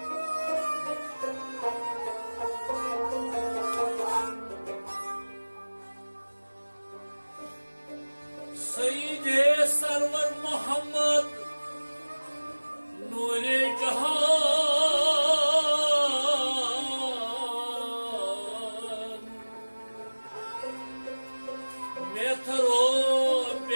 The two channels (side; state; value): both; inverted; correlation -1.00